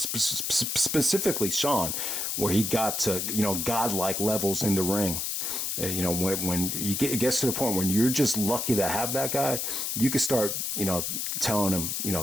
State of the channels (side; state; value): left; noise; hiss, 1 dB below the sound